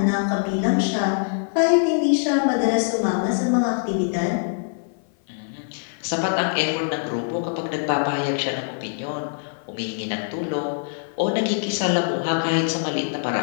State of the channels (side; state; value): right; silent; 57 dB below the other